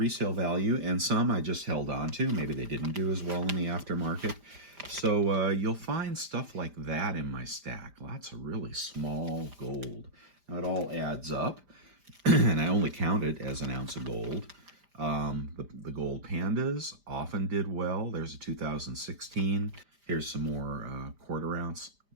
value, and some I just held on to. Maybe they didn't do as well in the aftermarket. So you'll find stuff like that in my stack. Lots of really small gold. Now it all adds up, and I only count it as an ounce of gold. The gold pandas often did well. There's a 2016. Here's some more 1/4 ounce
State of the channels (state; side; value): late; left; 5.0 ms